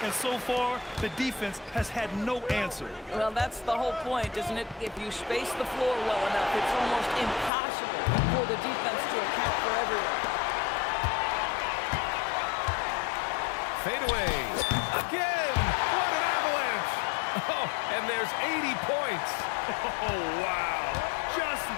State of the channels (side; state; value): right; drops out; at 7.5 s